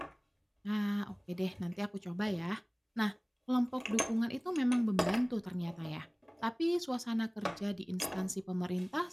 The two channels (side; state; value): both; identical; correlation 1.00